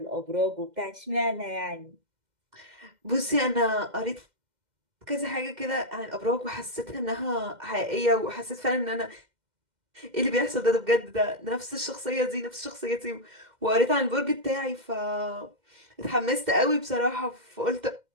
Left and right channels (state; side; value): late; left; 2.1 ms